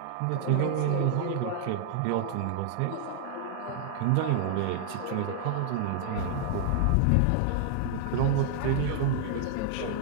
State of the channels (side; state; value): both; different; correlation -0.01